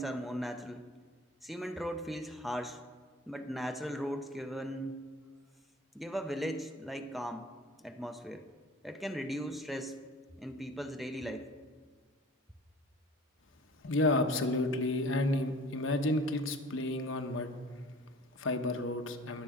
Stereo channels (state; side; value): normal; both; correlation 0.45